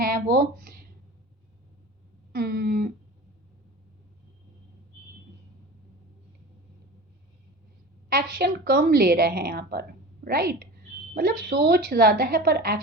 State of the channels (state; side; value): normal; both; correlation 0.34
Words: वो एक्शन कम ले रहे हैं यहाँ पर, राइट। मतलब सोच ज़्यादा है पर